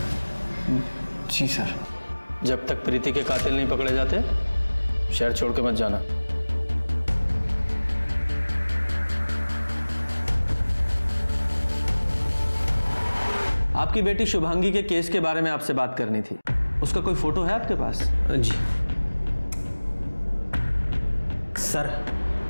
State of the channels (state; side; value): inverted; both; correlation -1.00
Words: जी सर। जब तक प्रीति के कातिल नहीं पकड़े जाते शहर छोड़ के मत जाना। आपकी बेटी शुभांगी के केस के बारे में आपसे बात करनी थी। उसका कोई फोटो है आपके पास? जी सर,